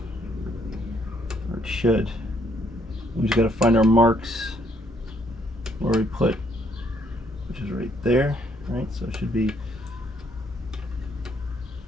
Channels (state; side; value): normal; both; correlation 0.69